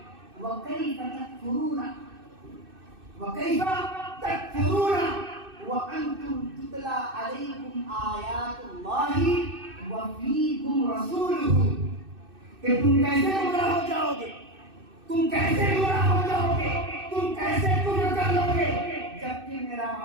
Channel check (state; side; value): late; left; 2.6 ms